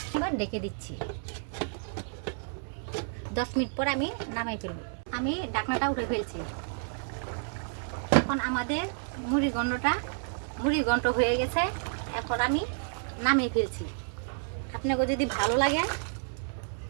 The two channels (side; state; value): left; silent; digital silence